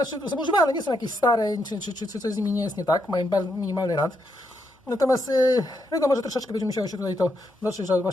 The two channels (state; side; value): normal; both; correlation 0.80